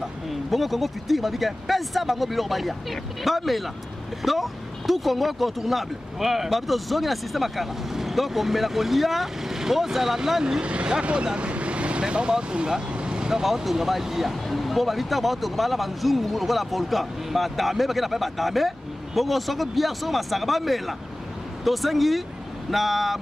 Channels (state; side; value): normal; both; correlation 0.97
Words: bongo Congo futur babi ke pesa bango biloko balia bamela donc tout Congo contournable babi tozongi na système akala donc omela kolia ozala nani yakodame mais bango baotonga donc baotonga balia po babi ntango baotonga bala banzungu lokola volcan badame bakenda mpe badame bongo soko bière soko masaka bamela tosengi na